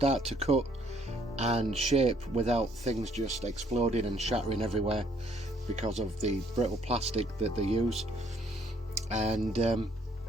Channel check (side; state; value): both; normal; correlation 0.65